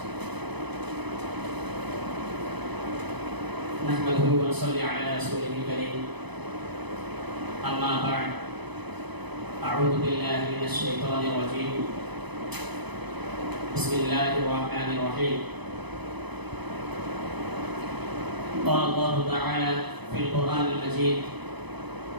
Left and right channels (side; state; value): left; late; 0.99 ms